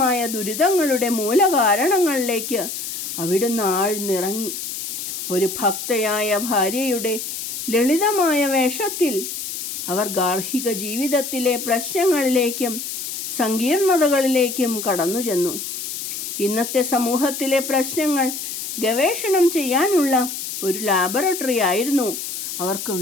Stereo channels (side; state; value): left; noise; hiss, 6 dB below the sound